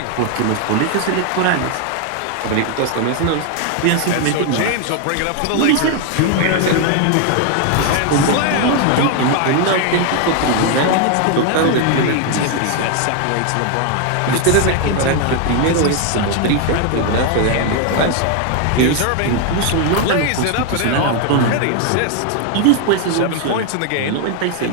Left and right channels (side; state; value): both; different; correlation 0.01